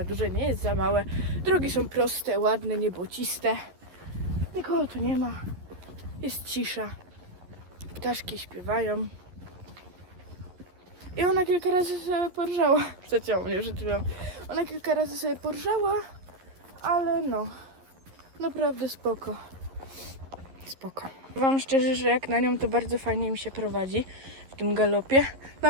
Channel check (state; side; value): late; left; 11 ms